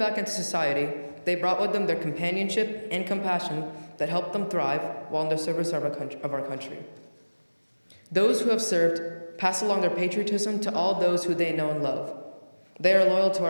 into society, they brought with them their companionship and compassion that helped them thrive while in the service of our country. Those who have served pass along their patriotism to all those who they know and love. They are loyal to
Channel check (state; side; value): inverted; both; correlation -1.00